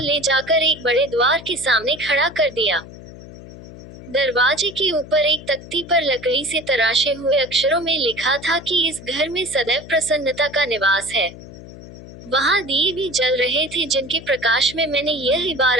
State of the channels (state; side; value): noise; left; hum, 16 dB below the sound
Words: जाकर एक बड़े द्वार के सामने खड़ा कर दिया। दरवाजे के ऊपर एक तख्ती पर लकड़ी से तराशे हुए अक्षरों में लिखा था कि इस घर में सदैव प्रसन्नता का निवास है। वहां दिए भी जल रहे थे जिनके प्रकाश में मैंने यह